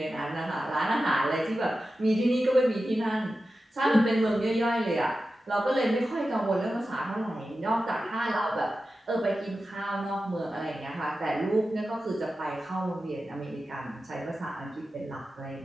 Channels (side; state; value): both; normal; correlation 0.93